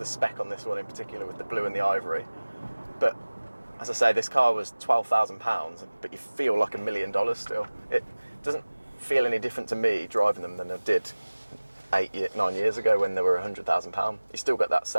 spec on this one in particular with the blue and the ivory, but as I say, this car was £12,000, but you feel like $1 million still. It doesn't feel any different to me driving them than I did 9 years ago when they were £100,000. You still got that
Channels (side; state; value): both; inverted; correlation -1.00